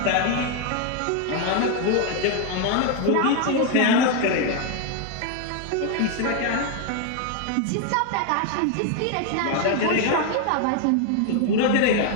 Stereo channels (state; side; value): different; both; correlation 0.01